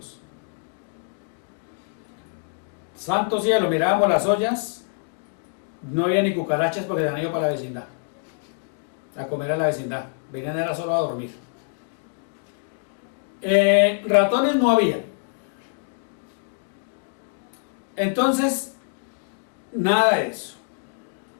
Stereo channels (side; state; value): right; silent; digital silence